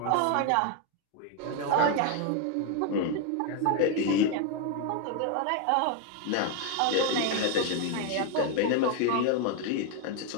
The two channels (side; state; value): both; different; correlation 0.01